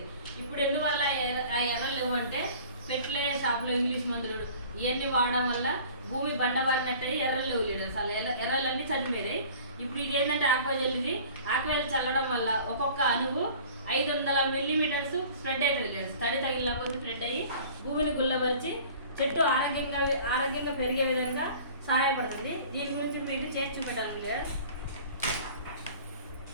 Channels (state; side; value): inverted; both; correlation -0.46